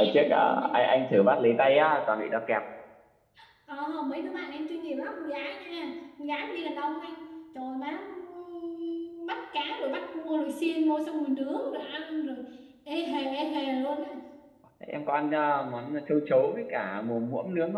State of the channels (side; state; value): both; identical; correlation 1.00